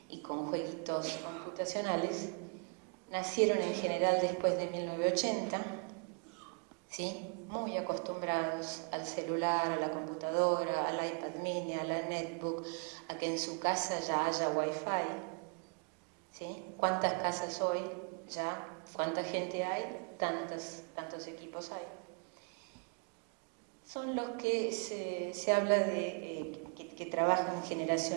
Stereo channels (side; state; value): left; quieter; 39.2 dB